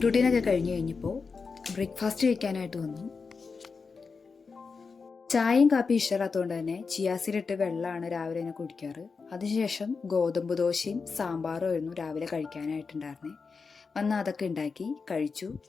റൂട്ടീനൊക്കെ കഴിഞ്ഞു കഴിഞ്ഞപ്പോൾ ബ്രേക്ക്ഫാസ്റ്റ് കഴിക്കാനായിട്ട് വന്നു. ചായയും കാപ്പി ഇഷ്ടമില്ലാത്തതുകൊണ്ട് തന്നെ ചിയാസീഡിട്ട് വെള്ളമാണ് രാവിലെ തന്നെ കുടിക്കാറ്. അതിനുശേഷം ഗോതമ്പ് ദോശയും സാമ്പാറും ആയിരുന്നു രാവിലെ കഴിക്കാനായിട്ടുണ്ടായിരുന്നേ. വന്ന് അതൊക്കെ ഉണ്ടാക്കി കഴിച്ചു.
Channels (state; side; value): quieter; right; 4.9 dB